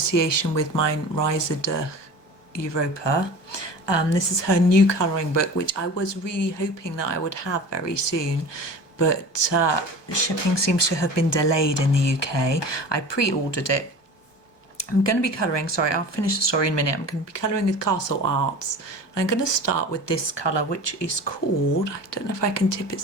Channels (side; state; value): right; late; 1.2 ms